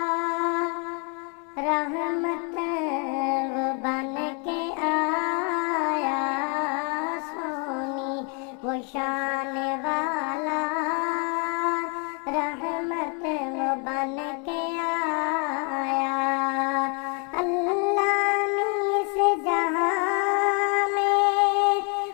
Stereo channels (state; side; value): quieter; right; 36.3 dB